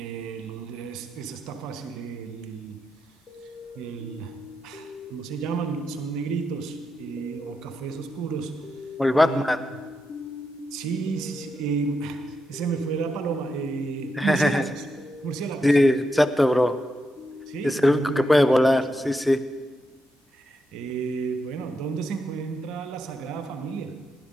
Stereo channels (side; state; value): both; normal; correlation 0.84